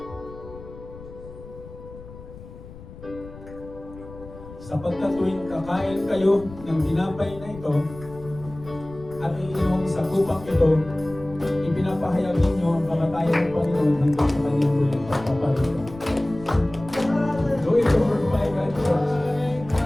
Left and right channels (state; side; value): noise; left; rumble, 16 dB below the sound